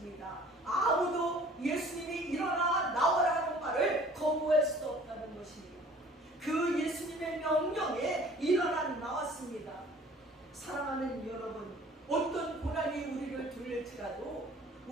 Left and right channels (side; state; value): both; normal; correlation 0.51